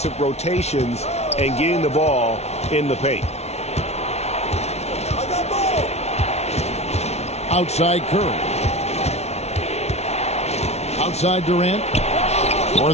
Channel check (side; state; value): right; late; 0.31 ms